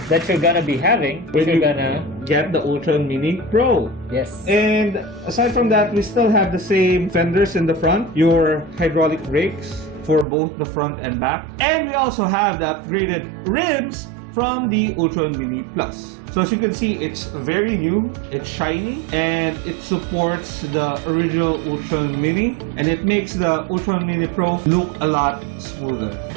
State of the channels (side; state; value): left; drops out; at 10.2 s